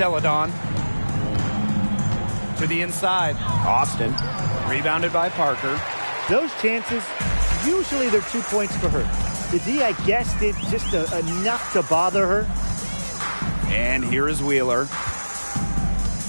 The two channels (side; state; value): both; inverted; correlation -1.00